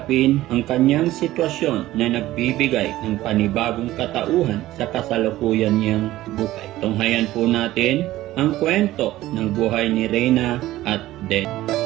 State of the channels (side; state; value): left; quieter; 15.7 dB